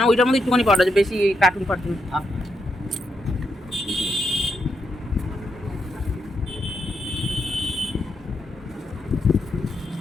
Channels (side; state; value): both; normal; correlation 0.81